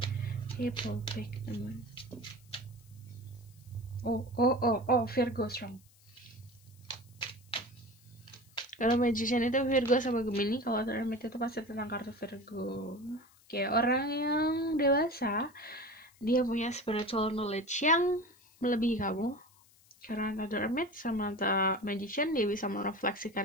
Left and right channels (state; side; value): noise; left; hiss, 29 dB below the sound